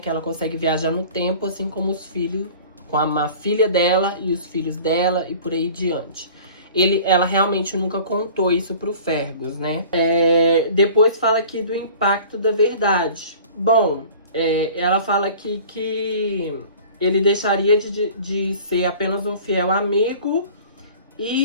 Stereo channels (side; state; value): both; inverted; correlation -0.44